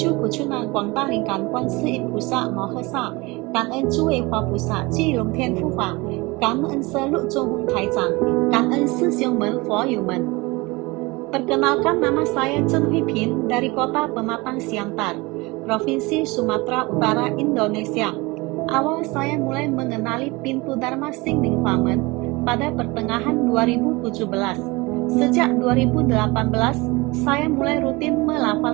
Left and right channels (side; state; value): left; quieter; 23.9 dB